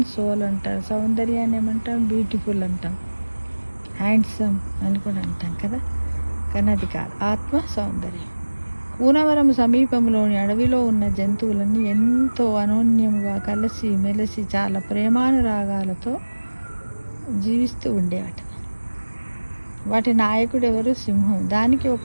సోల్ అంటారు. సౌందర్యాన్ని ఏమంటాం? బ్యూటిఫుల్ అంటాం, హ్యాండ్సమ్ అని కూడా అంటాం కదా. కానీ అది కాదు, ఆత్మ సౌందర్యం. కూనవరం సమీపంలోని అడవిలో ఉన్న జంతువులన్నీ ఎంతో అనోన్యముగా కలిసి మెలిసి చాలా ప్రేమానురాగాలతో జీవిస్తూ ఉండేవాట. వాటి నాయకుడు ఎవరు? సింహం. దానికి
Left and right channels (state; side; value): inverted; both; correlation -1.00